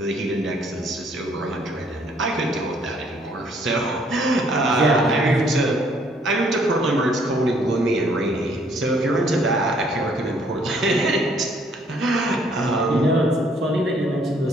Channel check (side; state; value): both; normal; correlation 0.64